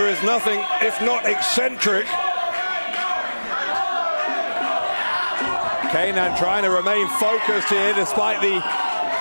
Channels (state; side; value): inverted; both; correlation -1.00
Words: is nothing if not eccentric. Kenan trying to remain focused here despite the